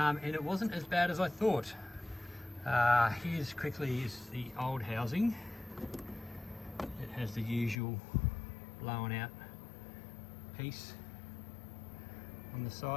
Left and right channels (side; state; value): right; drops out; at 7.8 s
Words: it wasn't as bad as I thought. Here's quickly is the old housing. It has the usual blown out piece on the